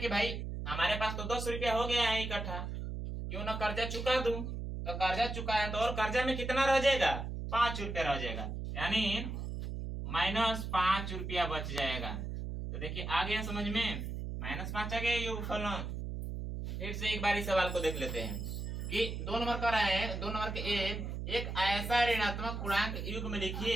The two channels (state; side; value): noise; right; hum, 5 dB below the sound